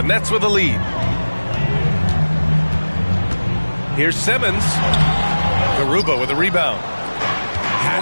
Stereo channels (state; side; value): inverted; both; correlation -1.00